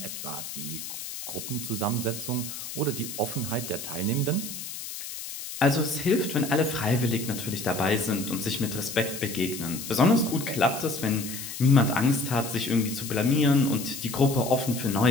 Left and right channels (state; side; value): noise; left; hiss, 9 dB below the sound